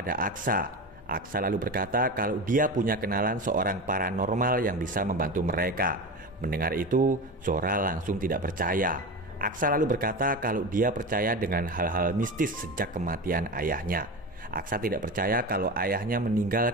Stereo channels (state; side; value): normal; both; correlation 0.25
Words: Aksa. Aksa lalu berkata kalau dia punya kenalan seorang paranormal yang bisa membantu mereka. Mendengar itu, Zora langsung tidak percaya. Aksa lalu berkata kalau dia percaya dengan hal-hal mistis sejak kematian ayahnya. Aksa tidak percaya kalau ayahnya meninggal